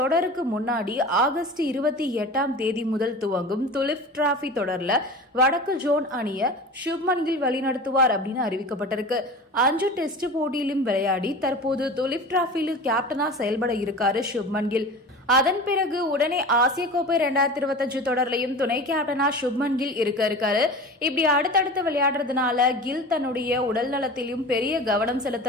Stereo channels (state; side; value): normal; both; correlation 0.34